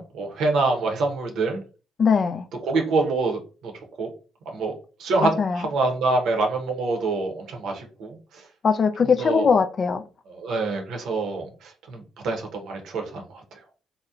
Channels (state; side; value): normal; both; correlation 0.73